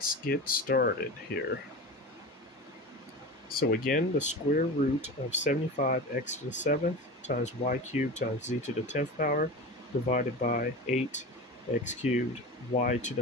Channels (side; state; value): both; normal; correlation 0.29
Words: get started here. So again, the square root of 75x to the 7th times y cubed times z to the 10th power divided by 8x cubed y to